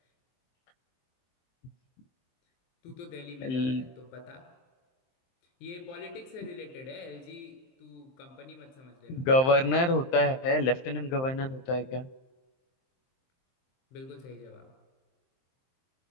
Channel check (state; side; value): late; right; 23 ms